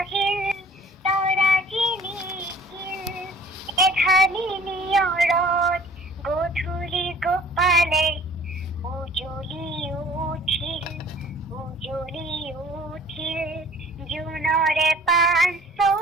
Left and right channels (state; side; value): normal; both; correlation 0.51